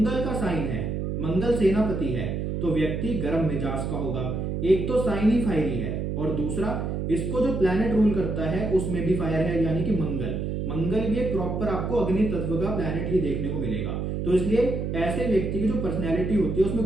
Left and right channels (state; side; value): noise; right; hum, 2 dB below the sound